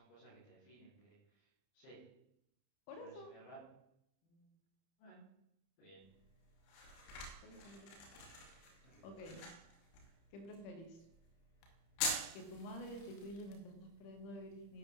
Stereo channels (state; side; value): late; right; 30 ms